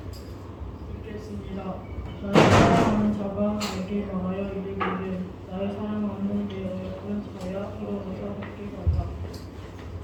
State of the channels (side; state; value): both; identical; correlation 1.00